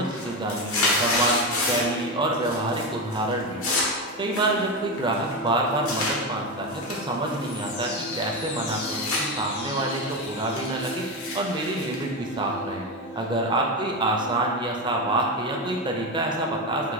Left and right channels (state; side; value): normal; both; correlation 0.15